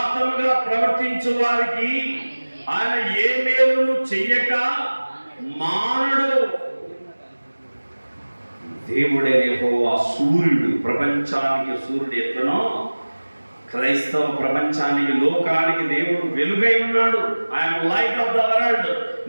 ప్రవర్తించు వారికి ఆయన ఏ మేలును చెయ్యక మానడు. దేవుడే యెహోవా సూర్యుడు. ప్రపంచానికి సూర్యుడు ఎట్లనో క్రైస్తవ ప్రపంచానికి, లోకానికి దేవుడు వెలుగై ఉన్నాడు. I'm light of the world.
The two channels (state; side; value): inverted; both; correlation -1.00